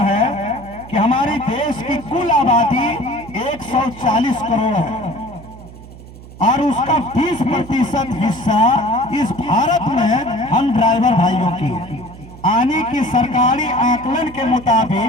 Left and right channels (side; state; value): right; noise; hum, 17 dB below the sound